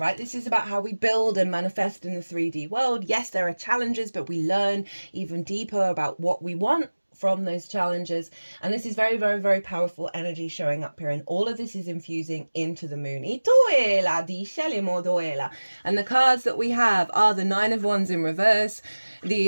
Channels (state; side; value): inverted; both; correlation -1.00